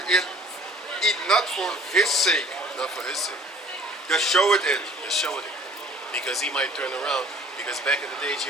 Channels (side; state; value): both; normal; correlation 0.51